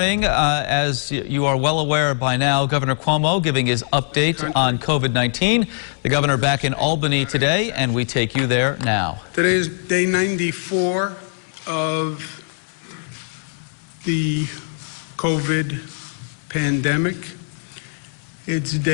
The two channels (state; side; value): silent; right; 65 dB below the other